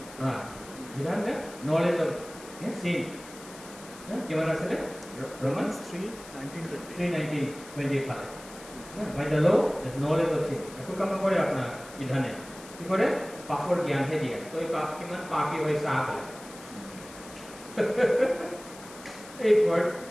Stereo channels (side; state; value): left; noise; hiss, 17 dB below the sound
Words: বিধান নলেজ অফ চিন কিমান আছিলে Romans 3:19-20 ফালে by the law is knowledge of sin একো কাম কৰে আপোনাৰ বিধানে কি কৰে পাপৰ জ্ঞানহে দিয়ে তো এই পাপ কিমান পাপী হৈ চাহ বোলে এই